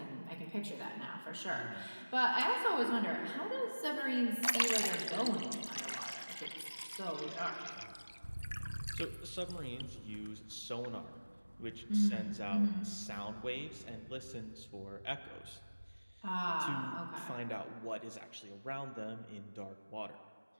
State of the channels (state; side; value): inverted; both; correlation -1.00